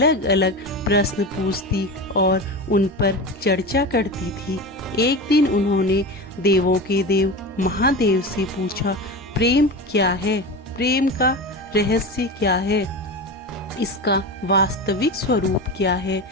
अलग प्रश्न पूछती और उन पर चर्चा करती थी। एक दिन उन्होंने देवों के देव महादेव से पूछा, प्रेम क्या है? प्रेम का रहस्य क्या है? इसका वास्तविक स्वरूप क्या है?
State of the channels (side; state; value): both; normal; correlation 0.26